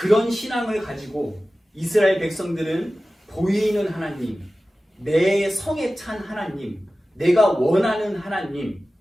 신앙을 가지고 이스라엘 백성들은 보이는 하나님, 내 성에 찬 하나님, 내가 원하는 하나님,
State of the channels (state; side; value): normal; both; correlation 0.96